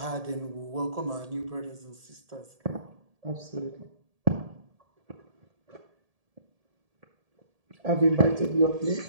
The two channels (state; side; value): late; left; 1.7 ms